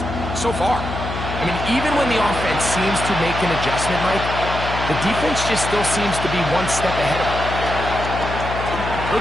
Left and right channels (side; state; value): left; noise; hum, 6 dB below the sound